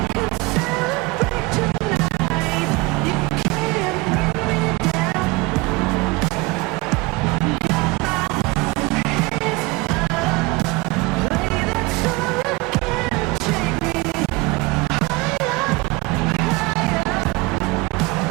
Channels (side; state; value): left; quieter; 23.9 dB